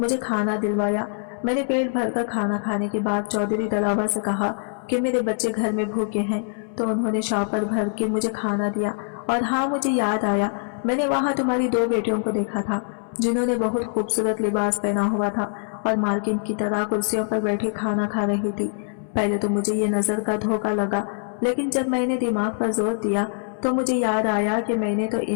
मुझे खाना दिलवाया। मैंने पेट भरकर खाना खाने के बाद चौधरी दलावर से कहा कि मेरे बच्चे घर में भूखे हैं, तो उन्होंने शॉपर भर के मुझे खाना दिया। और हाँ, मुझे याद आया, मैंने वहाँ तुम्हारी 2 बेटियों को देखा था, जिन्होंने बहुत खूबसूरत लिबास पहना हुआ था और मालकिन की तरह कुर्सियों पर बैठे खाना खा रही थी। पहले तो मुझे ये नजर का धोखा लगा, लेकिन जब मैंने दिमाग पर जोर दिया तो मुझे याद आया कि मैंने तो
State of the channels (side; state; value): right; silent; 61 dB below the other